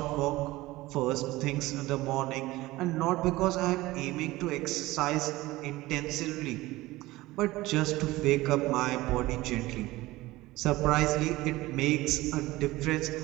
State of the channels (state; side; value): quieter; left; 18.8 dB